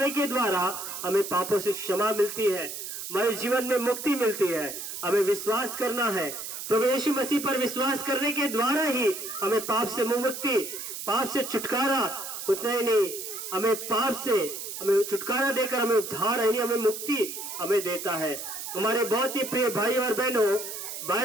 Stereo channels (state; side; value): noise; right; hiss, 7 dB below the sound